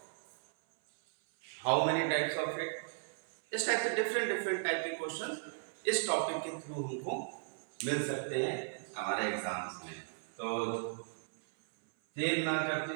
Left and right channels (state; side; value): silent; left; 54 dB below the other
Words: how many types of it, इस टाइप से डिफरेंट टाइप के क्वेश्चन इस टॉपिक के थ्रू हमको मिल सकते हैं हमारे एग्जाम्स में। तो देर ना करते